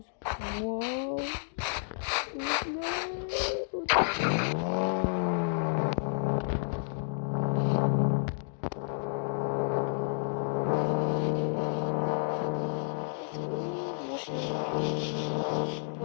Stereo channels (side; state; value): right; silent; digital silence